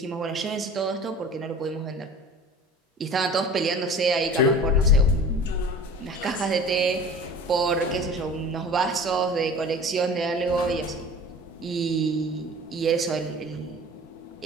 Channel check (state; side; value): normal; both; correlation 0.41